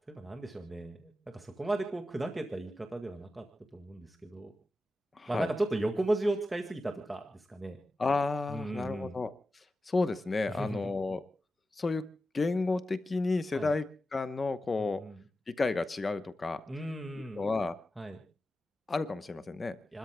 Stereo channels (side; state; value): both; normal; correlation 0.92